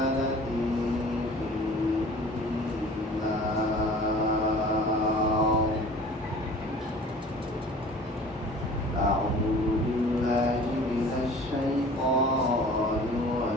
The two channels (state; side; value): normal; both; correlation 0.46